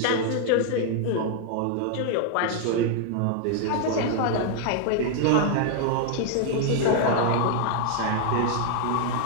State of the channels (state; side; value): different; both; correlation 0.00